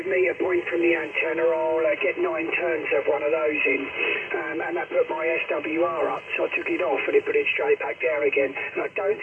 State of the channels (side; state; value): both; identical; correlation 1.00